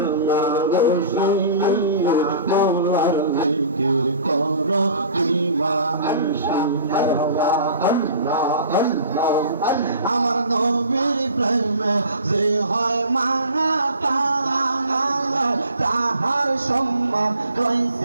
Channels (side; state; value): both; inverted; correlation -0.44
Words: রসুলিয়া মওলার জিকির করো দিবানিশি মারওয়া আল্লাহ আল্লাহ আমার নবীর প্রেমে যে হয় মানা তাহার সম্মান